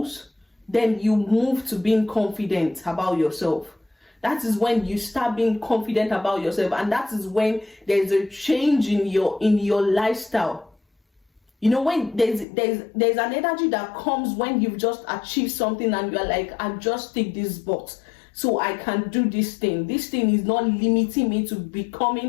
then you move to being confident about yourself. That is when you start being confident about yourself, and that is when there's a change in your lifestyle. You know, when there's an energy that comes when you've just achieved something and you're like, I just tick this box, so I can do this thing. This thing is not limiting me to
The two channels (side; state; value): right; drops out; at 12.5 s